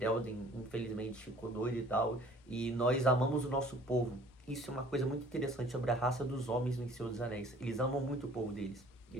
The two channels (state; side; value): normal; both; correlation 0.52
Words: infelizmente, ficou doido e tal, e nós amamos o nosso povo. Isso é uma coisa muito interessante sobre a raça dos homens no Senhor dos Anéis. Eles amam muito o povo deles.